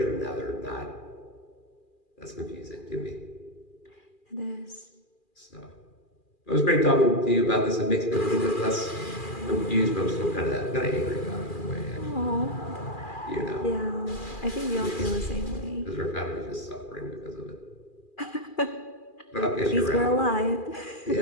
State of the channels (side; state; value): right; late; 2.4 ms